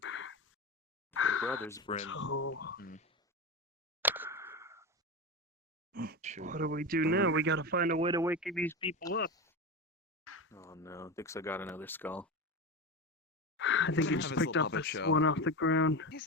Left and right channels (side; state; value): both; normal; correlation 0.21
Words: The Brothers Brim. So, Shoot. what do we do now? We gotta find a way to wake these people up. Oh no, Dix, I got another skull. I think he Have just his picked little up puppet this show. one off the ground. He's